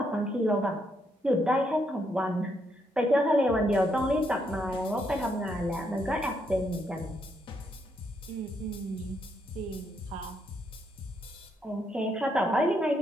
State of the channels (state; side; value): normal; both; correlation 0.76